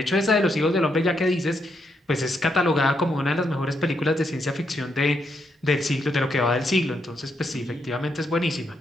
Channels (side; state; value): both; normal; correlation 0.79